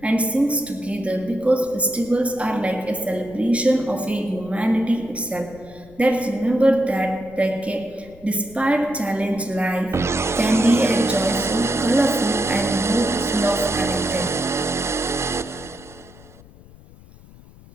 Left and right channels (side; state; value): left; noise; rumble, 22 dB below the sound